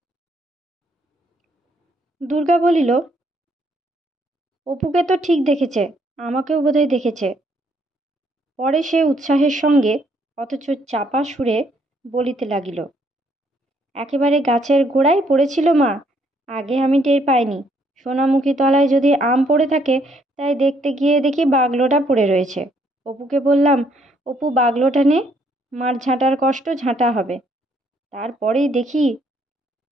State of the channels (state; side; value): normal; both; correlation 0.69